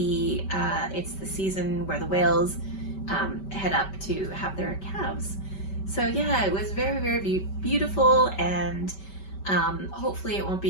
season where the whales head up to have their calves. So yeah, it was very beautiful, and hopefully it won't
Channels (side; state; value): right; late; 5.2 ms